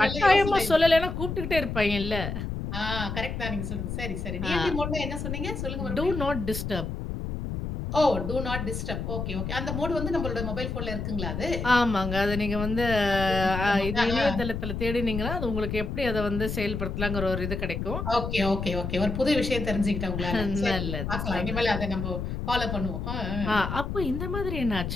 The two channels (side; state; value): left; noise; rumble, 4 dB below the sound